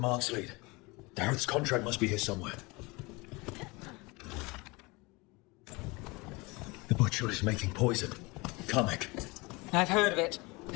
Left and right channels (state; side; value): quieter; right; 25.1 dB